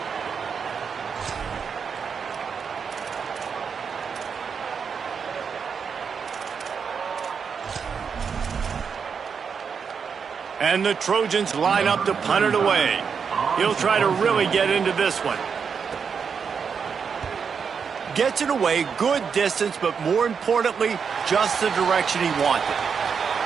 And the Trojans line up to punt it away. He'll try to really get into this one. Gets it away, good distance, but more importantly, just the direction he wanted.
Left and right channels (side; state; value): left; quieter; 6.3 dB